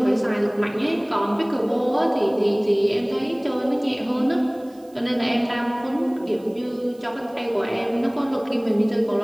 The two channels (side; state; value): right; noise; hiss, 30 dB below the sound